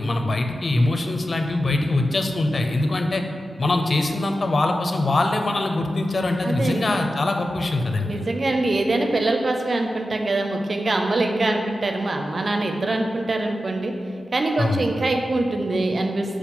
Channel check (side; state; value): both; normal; correlation 0.91